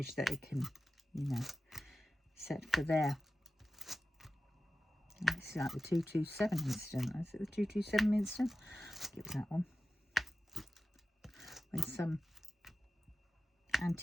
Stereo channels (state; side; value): normal; both; correlation 0.94